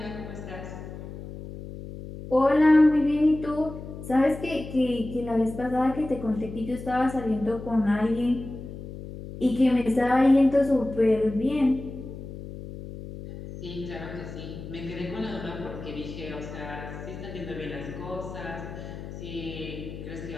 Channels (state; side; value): noise; left; hum, 11 dB below the sound